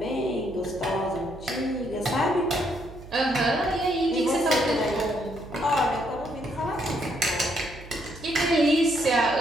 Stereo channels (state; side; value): noise; right; hum, 16 dB below the sound